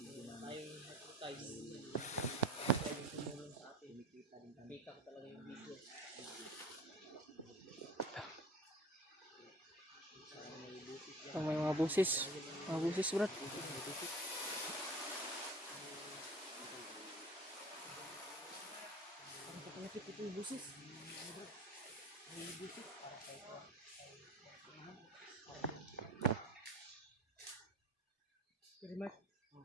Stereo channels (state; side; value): normal; both; correlation 0.39